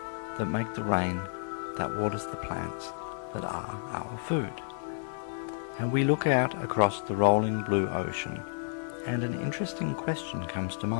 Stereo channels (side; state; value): right; silent; digital silence